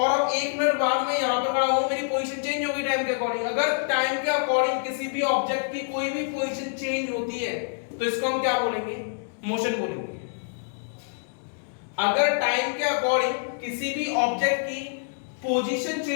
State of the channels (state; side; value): silent; right; digital silence